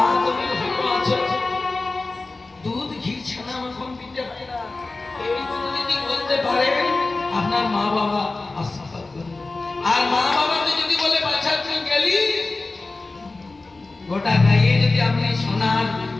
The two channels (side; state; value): right; quieter; 3.4 dB